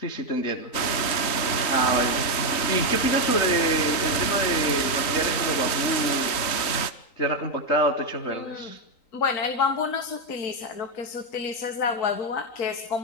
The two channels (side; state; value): right; late; 3.9 ms